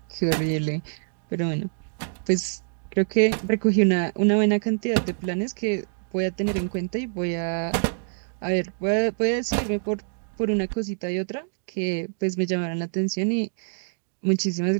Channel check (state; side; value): silent; left; digital silence